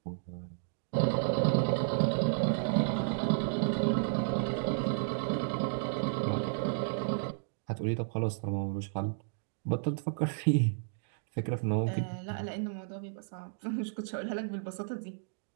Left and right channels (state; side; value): silent; left; digital silence